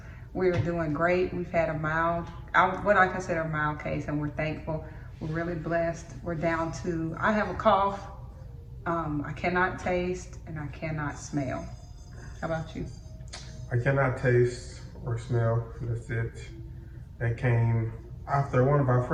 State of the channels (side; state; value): both; identical; correlation 1.00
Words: We're doing great. We've had a mild, what I consider a mild case, and we're thankful. We're really blessed. We're down to, I have a cough. I cannot taste and I cannot smell. How about you? I cannot taste or smell. That's it. That came after one of our